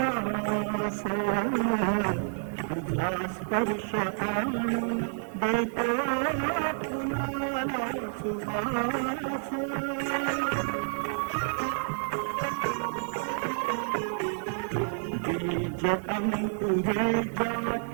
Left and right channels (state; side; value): silent; left; digital silence